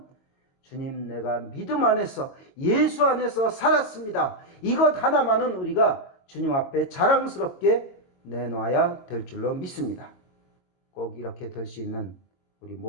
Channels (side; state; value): right; late; 22 ms